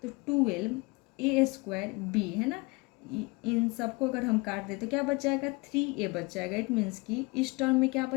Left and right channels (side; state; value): right; quieter; 26.8 dB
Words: तो 12a² है ना, इन सबको अगर हम काट दें तो क्या बच जाएगा, 3a बच जाएगा। इट मीन्स कि इस टर्म में क्या